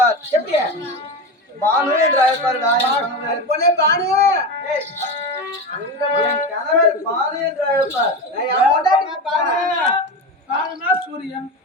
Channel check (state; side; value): normal; both; correlation 0.21